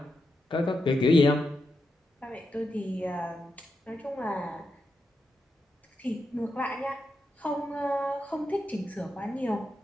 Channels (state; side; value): normal; both; correlation 0.86